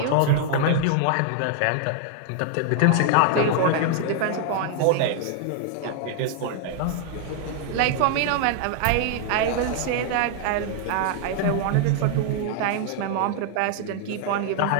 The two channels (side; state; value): both; different; correlation 0.00